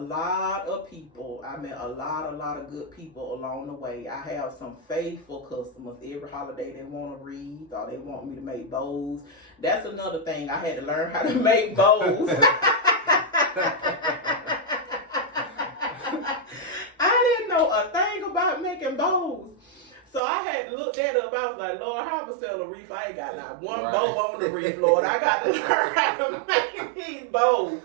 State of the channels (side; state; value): left; drops out; at 20.2 s